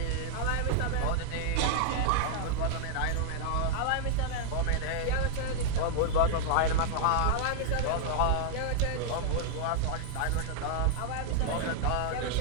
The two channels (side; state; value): both; different; correlation -0.01